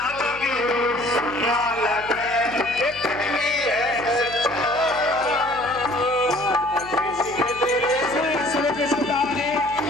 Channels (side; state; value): left; noise; hum, 19 dB below the sound